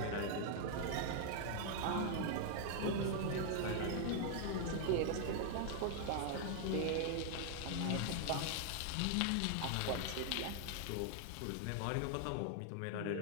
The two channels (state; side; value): different; both; correlation 0.00